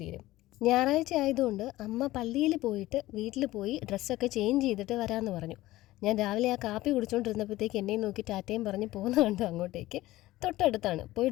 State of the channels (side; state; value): right; quieter; 17.0 dB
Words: തീരും. ഞായറാഴ്ച ആയതുകൊണ്ട് അമ്മ പള്ളിയിൽ പോയിട്ട് വീട്ടിൽ പോയി ഡ്രസ്സൊക്കെ ചേഞ്ച് ചെയ്തിട്ട് വരാമെന്ന് പറഞ്ഞു. ഞാൻ രാവിലെ ആ കാപ്പി കുടിച്ചുകൊണ്ടിരുന്നപ്പോഴത്തേക്ക് എന്നെയും നോക്കി ടാറ്റയും പറഞ്ഞ് പോകുന്ന കണ്ടു അങ്ങോട്ടേക്ക്. തൊട്ടടുത്താണ്, പോയി